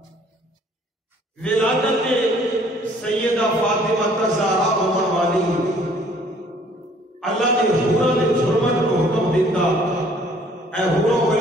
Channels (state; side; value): normal; both; correlation 0.58